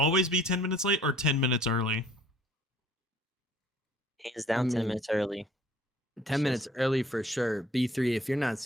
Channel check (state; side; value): normal; both; correlation 0.55